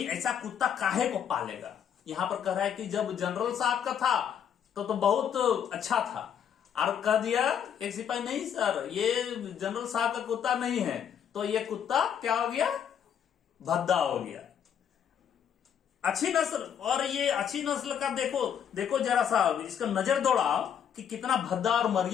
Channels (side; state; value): right; quieter; 8.5 dB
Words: ऐसा कुत्ता काहे को पालेगा। यहां पर कह रहा है कि जब जनरल साहब का था तो बहुत अच्छा था, और कह दिया एक सिपाही, नहीं सर ये जनरल साहब का कुत्ता नहीं है, तो ये कुत्ता क्या हो गया, भद्दा हो गया। अच्छी नस्ल, और ये अच्छी नस्ल का देखो जरा सा इसका नजर दौड़ाओ कि कितना भद्दा और